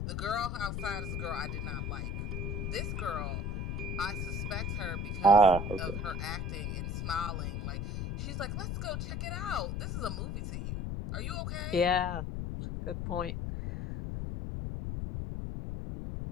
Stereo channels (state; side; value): noise; left; rumble, 2 dB below the sound